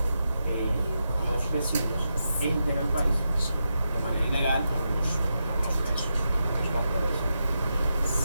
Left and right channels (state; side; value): inverted; both; correlation -0.87